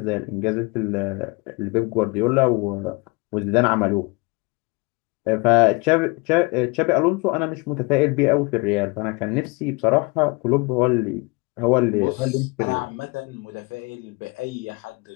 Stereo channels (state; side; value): quieter; right; 27.5 dB